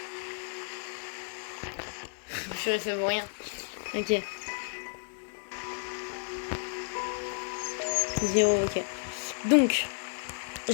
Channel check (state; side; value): silent; right; 56 dB below the other